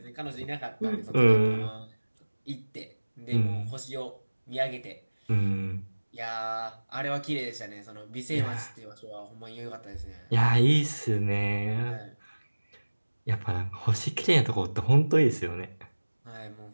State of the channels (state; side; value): inverted; both; correlation -1.00